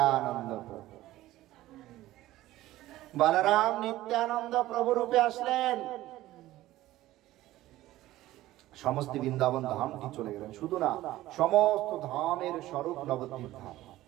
প্রভু। বলরাম নিত্যানন্দ প্রভু রূপে আসলেন। সমস্ত বৃন্দাবন ধামটি চলে গেলেন, শুধু না সমস্ত ধামের স্বরূপ নবদ্বীপ ধাম।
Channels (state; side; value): quieter; left; 15.8 dB